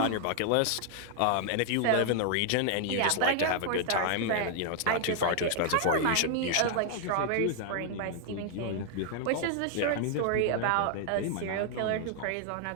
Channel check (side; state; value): both; different; correlation 0.00